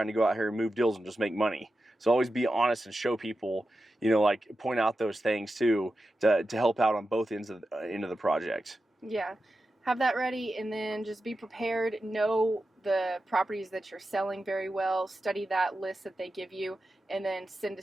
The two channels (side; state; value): both; normal; correlation 0.91